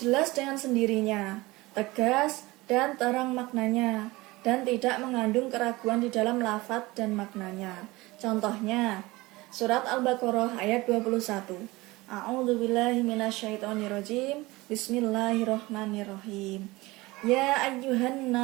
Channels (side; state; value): left; quieter; 21.1 dB